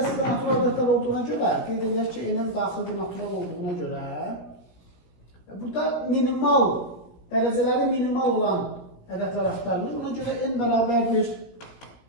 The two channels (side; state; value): right; late; 17 ms